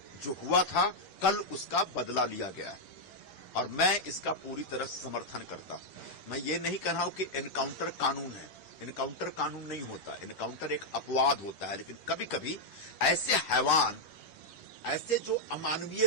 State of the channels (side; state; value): right; late; 10 ms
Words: जो हुआ था कल उसका बदला लिया गया है और मैं इसका पूरी तरह समर्थन करता हूं। मैं ये नहीं कह रहा हूं कि एनकाउंटर कानून है, एनकाउंटर कानून नहीं होता, एनकाउंटर एक अपवाद होता है, लेकिन कभी कभी ऐसे हैवान, ऐसे जो